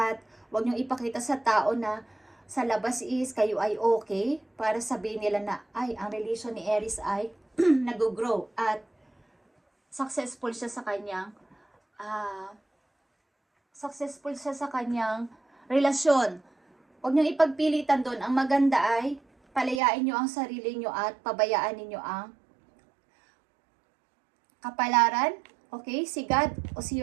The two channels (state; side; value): drops out; left; at 19.8 s